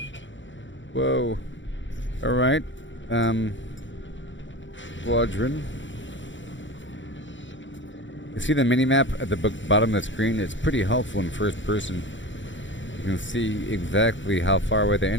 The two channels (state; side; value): late; right; 0.55 ms